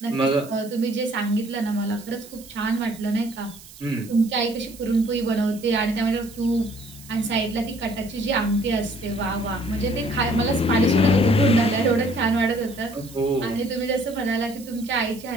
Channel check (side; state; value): right; noise; hiss, 19 dB below the sound